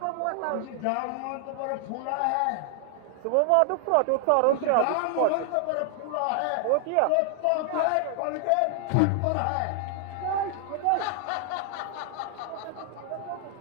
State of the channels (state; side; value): different; both; correlation 0.00